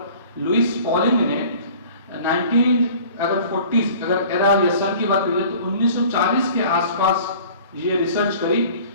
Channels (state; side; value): inverted; both; correlation -0.47